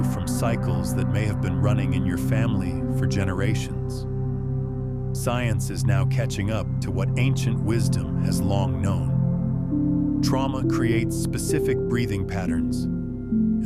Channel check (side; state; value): both; identical; correlation 1.00